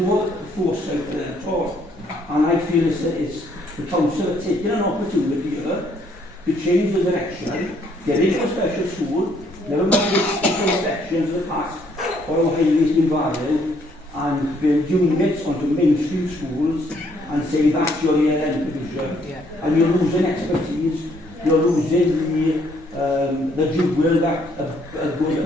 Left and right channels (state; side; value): normal; both; correlation 0.67